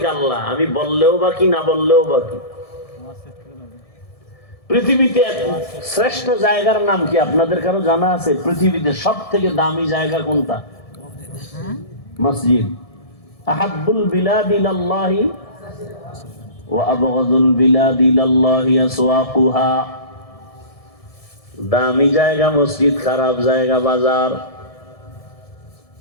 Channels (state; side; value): late; right; 1.7 ms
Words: আল্লাহ, আমি বললেও বাকি না বললেও বাকি। পৃথিবীতে শ্রেষ্ঠ জায়গার নাম কি আপনাদের কারো জানা আছে? পৃথিবীতে সব থেকে দামি জায়গা কোনটা? মসজিদ। আহাব্বুল বিলাদ ইলাল্লাহি ওয়া আবগাদুল বিলাদ ইলাল্লাহি আসওয়াকুহা। দামি জায়গা মসজিদ, খারাপ জায়গা বাজার।